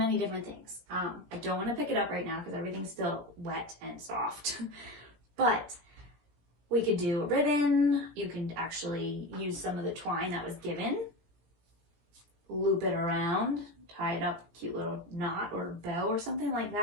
different things. I don't want to pick it up right now because everything's still wet and soft, but we could do a ribbon. You can actually use some of the twine that was given, loop it around, tie it up, cute little knot or bow or something like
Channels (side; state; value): left; late; 17 ms